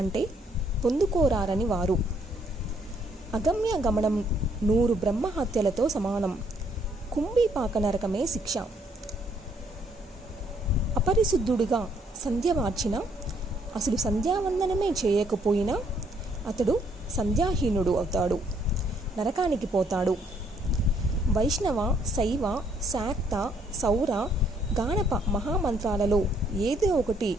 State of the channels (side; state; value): both; normal; correlation 0.68